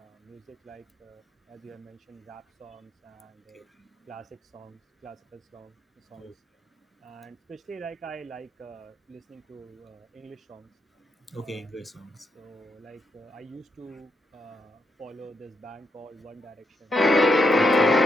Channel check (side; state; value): both; normal; correlation 0.80